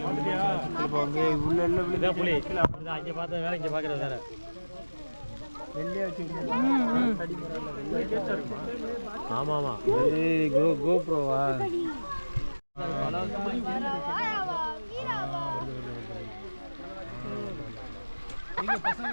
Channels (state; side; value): inverted; both; correlation -1.00